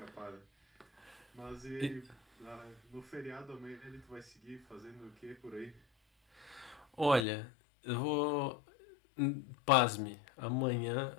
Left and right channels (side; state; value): right; drops out; at 7.2 s